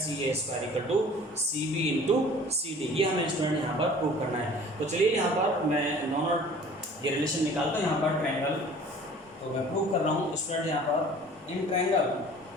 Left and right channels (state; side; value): normal; both; correlation 0.48